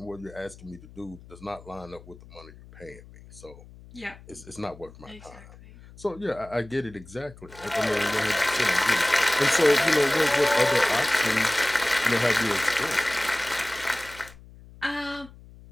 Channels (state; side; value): noise; left; hum, 20 dB below the sound